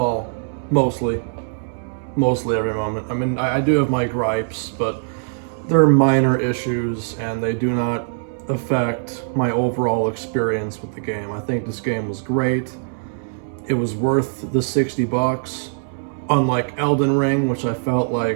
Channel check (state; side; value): silent; left; 65 dB below the other